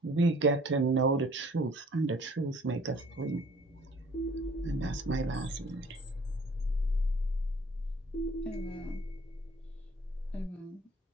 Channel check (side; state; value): both; normal; correlation 0.55